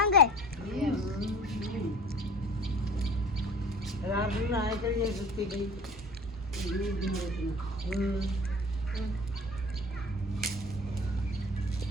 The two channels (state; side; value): normal; both; correlation 0.42